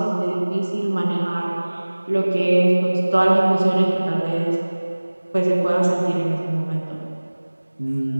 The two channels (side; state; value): both; inverted; correlation -1.00